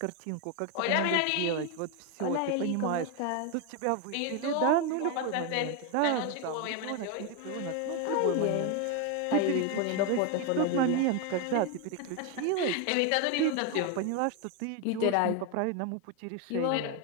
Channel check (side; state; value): both; different; correlation 0.01